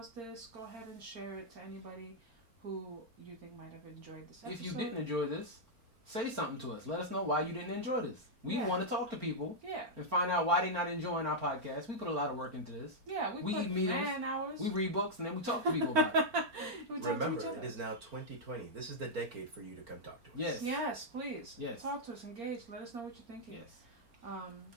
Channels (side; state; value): left; late; 4.4 ms